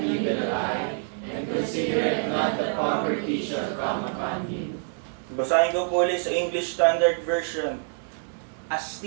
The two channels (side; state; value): left; silent; digital silence